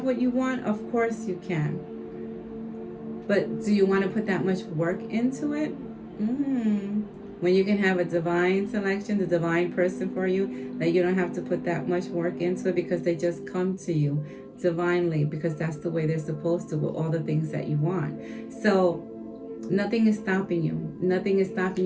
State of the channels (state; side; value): identical; both; correlation 1.00